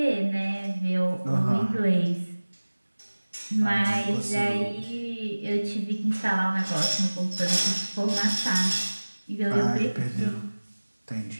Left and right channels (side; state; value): both; inverted; correlation -1.00